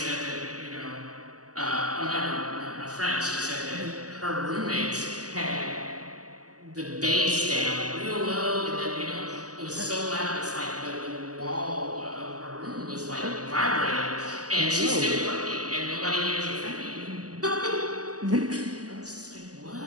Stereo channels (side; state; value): left; late; 0.67 ms